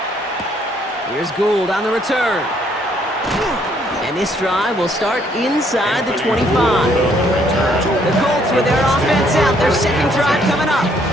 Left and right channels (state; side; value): normal; both; correlation 0.67